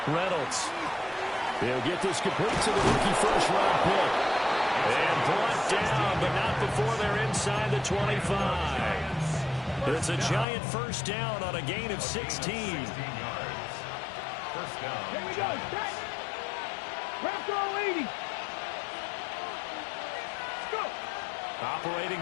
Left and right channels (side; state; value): right; drops out; at 10.5 s